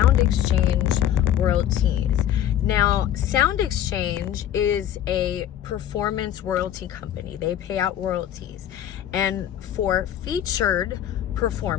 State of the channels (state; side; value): quieter; right; 10.9 dB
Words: Exchange royalties. Now, Sound Exchange is a performance royalty company. They pay out royalties. And for featured